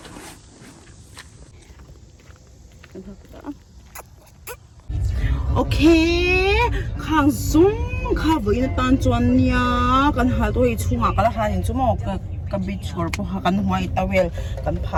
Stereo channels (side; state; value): both; identical; correlation 1.00